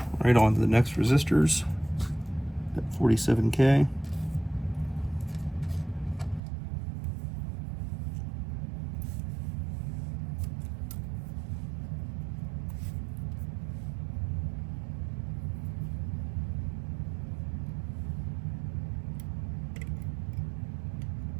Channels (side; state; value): left; drops out; at 6.4 s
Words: Right on to the next resistors at 47K.